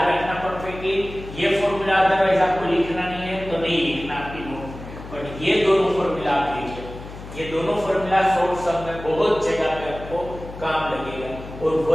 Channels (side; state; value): left; noise; hum, 13 dB below the sound